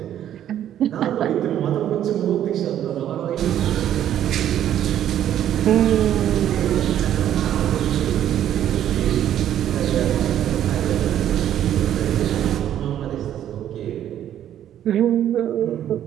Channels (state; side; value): quieter; left; 11.0 dB